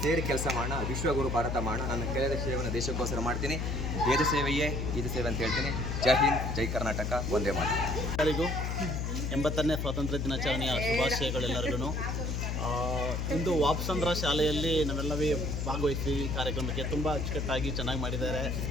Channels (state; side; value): noise; left; hum, 1 dB below the sound